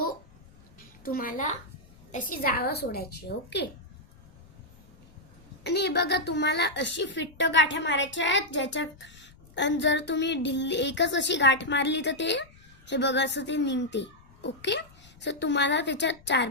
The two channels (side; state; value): left; noise; rumble, 26 dB below the sound